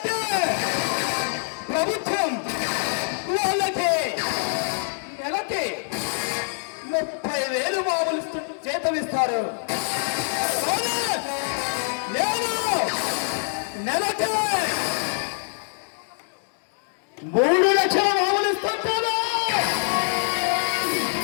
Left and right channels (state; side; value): silent; right; digital silence